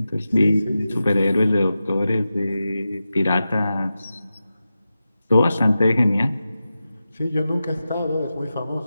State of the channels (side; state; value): both; inverted; correlation -0.93